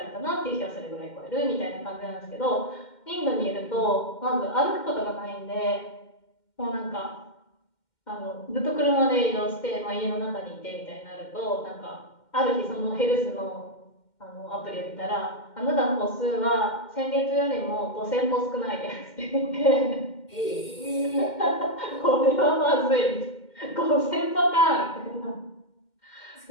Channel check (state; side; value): late; right; 2.1 ms